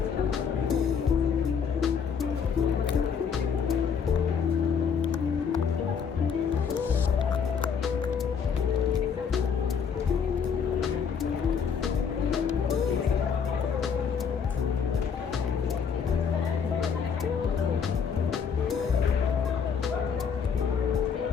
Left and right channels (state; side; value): quieter; right; 6.6 dB